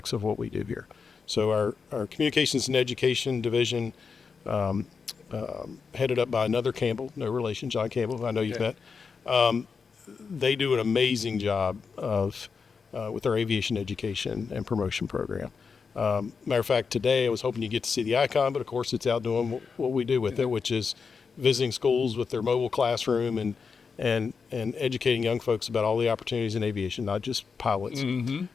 of what we do here. So our communications and education division, headed up by another Campbell, no relation, John Campbell, who I know you've met. They do an amazing job with our aviation education and promotion program. Matter of fact, today I was hoping you get to see the icon, but of course it's out doing what we do with it, which is visiting schools with their mobile classroom and educating young folks about all the opportunities in aviation, not just pilots.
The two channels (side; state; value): right; quieter; 5.4 dB